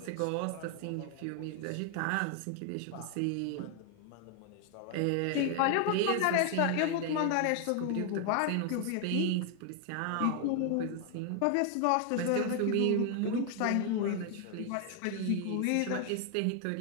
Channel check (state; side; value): different; both; correlation 0.00